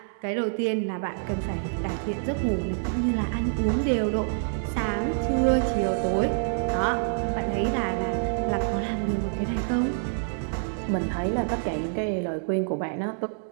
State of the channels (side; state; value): left; silent; digital silence